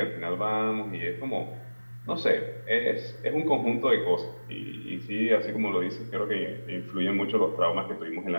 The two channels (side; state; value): both; inverted; correlation -1.00